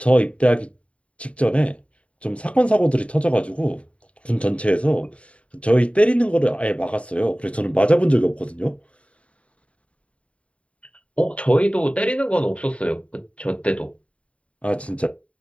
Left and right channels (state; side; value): late; right; 0.063 ms